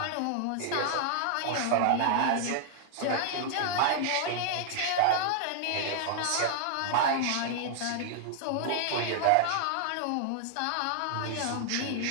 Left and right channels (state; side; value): different; both; correlation 0.00